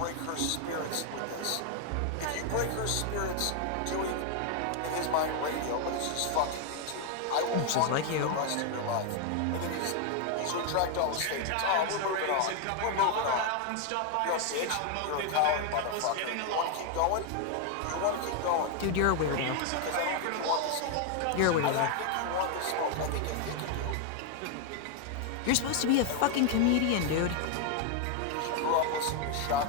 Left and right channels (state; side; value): different; both; correlation 0.01